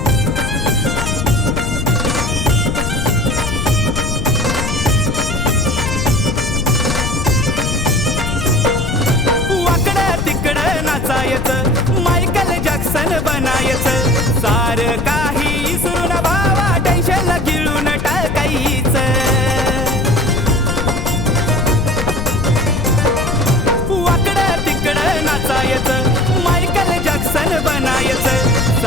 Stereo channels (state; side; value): noise; left; rumble, 2 dB below the sound